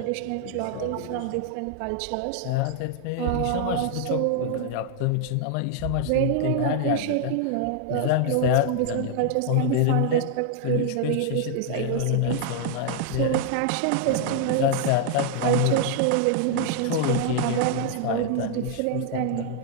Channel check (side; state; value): both; different; correlation 0.00